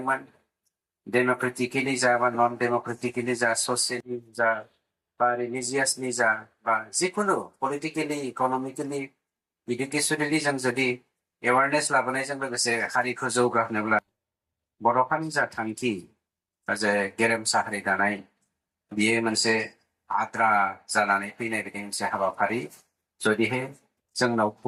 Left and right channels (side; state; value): both; identical; correlation 1.00